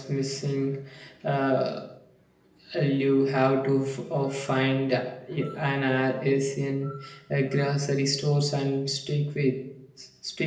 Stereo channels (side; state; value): both; identical; correlation 1.00